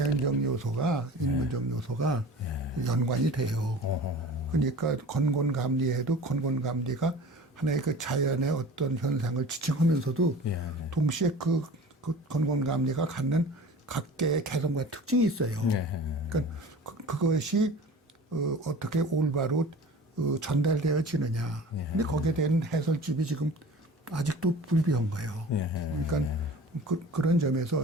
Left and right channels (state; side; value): normal; both; correlation 0.40